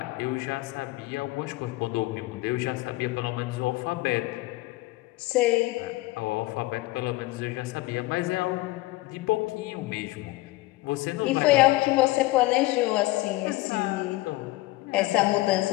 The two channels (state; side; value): quieter; right; 19.4 dB